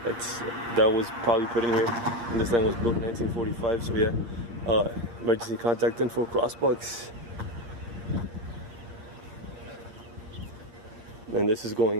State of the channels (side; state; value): left; late; 8.6 ms